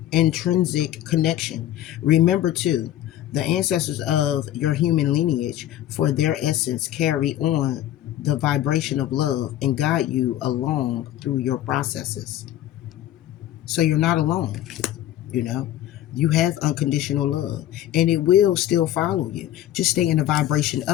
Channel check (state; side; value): quieter; right; 12.8 dB